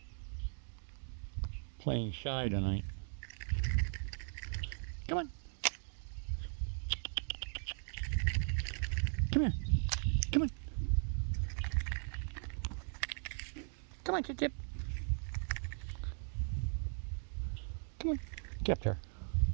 Playing shy tonight. Come on. Come here. Come on. Come on, Chip. Come on. Get up there.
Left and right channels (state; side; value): silent; left; 52 dB below the other